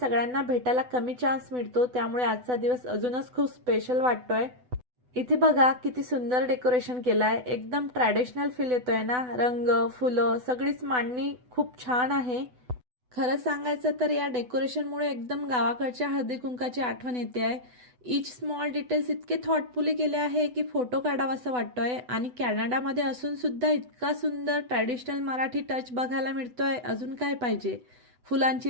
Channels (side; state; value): left; late; 8.0 ms